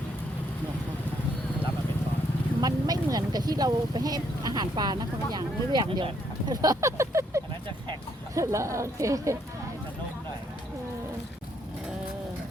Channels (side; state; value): both; normal; correlation 0.71